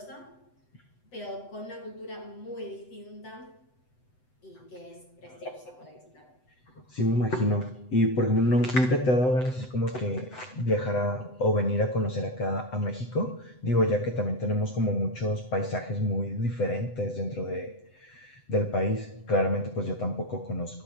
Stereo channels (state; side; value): late; right; 7.9 ms